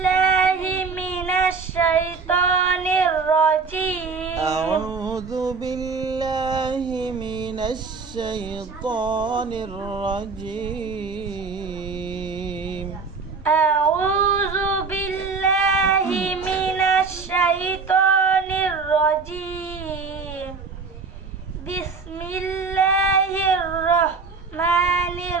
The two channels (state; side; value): quieter; left; 4.7 dB